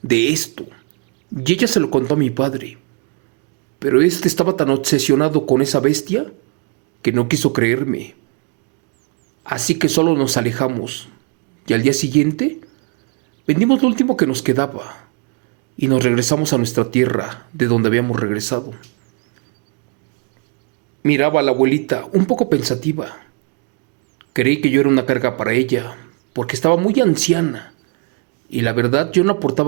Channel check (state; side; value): quieter; left; 34.1 dB